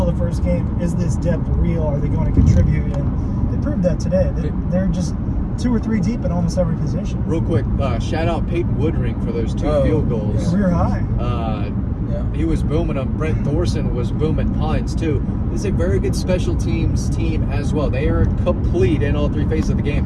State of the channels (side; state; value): both; identical; correlation 1.00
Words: the first game, is this depth real? Are they going to contribute? And they proved that today. They're just 2 or 3 deep in almost every position. Real quick, shout out Peyton Woodring for those 2 field goals. Yeah. Career high. He was booming them. Brent Thorson was booming punts too. This is a very good special teams team as well. They are complete in all 3 phases of the